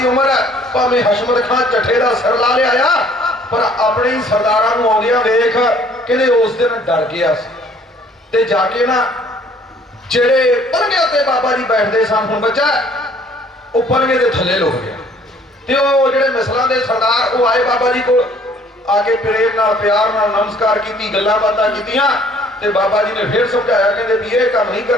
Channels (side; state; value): both; normal; correlation 0.58